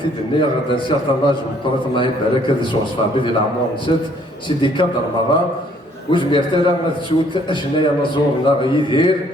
الدنيا غدا نسير طناج وطرات الله يبارك هذا سوغ صفابي ديال العمر نسات سيدي كادر مرة وجمير تالا غتسوت اشنايا نزورنا غيدير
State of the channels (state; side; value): normal; both; correlation 0.62